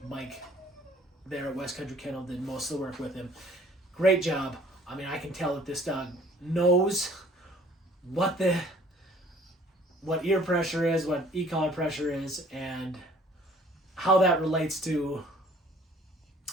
Mike there at West Country Kennel did most of the work with him. Great job. I can tell that this dog knows what ear pressure is, what e-collar pressure is, and how that relates to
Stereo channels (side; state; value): both; normal; correlation 0.55